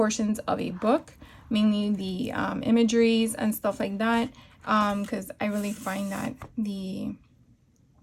of a book, mainly the imageries and stuff like that, because I really find that the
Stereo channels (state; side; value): identical; both; correlation 1.00